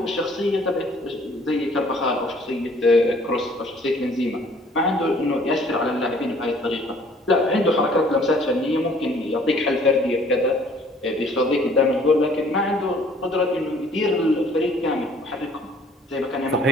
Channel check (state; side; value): normal; both; correlation 0.57